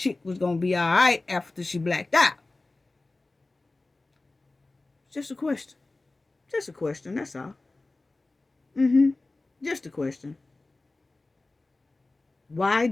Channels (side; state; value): right; quieter; 3.1 dB